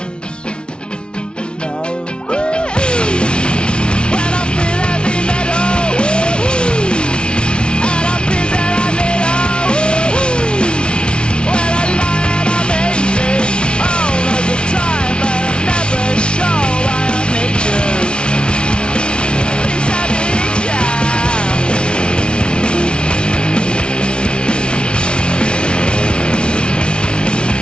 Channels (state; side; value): late; right; 0.057 ms